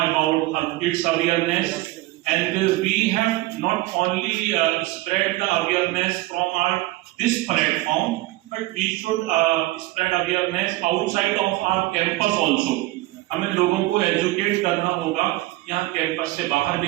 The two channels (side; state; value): left; quieter; 18.7 dB